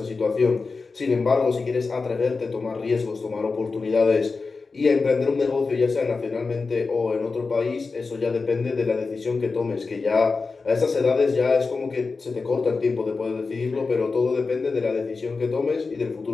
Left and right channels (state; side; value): quieter; right; 4.3 dB